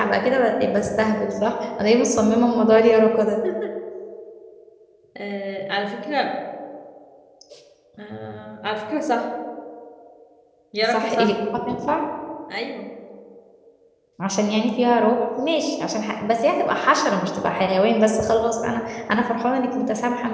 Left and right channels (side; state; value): both; identical; correlation 1.00